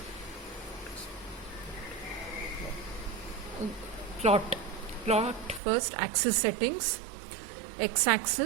plot first axis settings, X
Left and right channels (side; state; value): left; drops out; at 5.6 s